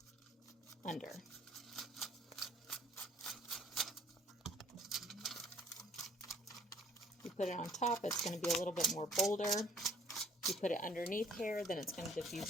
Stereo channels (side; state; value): both; normal; correlation 0.59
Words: under. You put it on top, it's going to be a little bit more bolder. You put it underneath hair, then it's going to